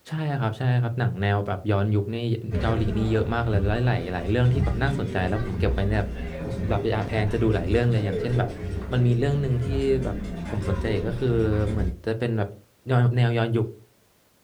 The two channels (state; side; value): identical; both; correlation 1.00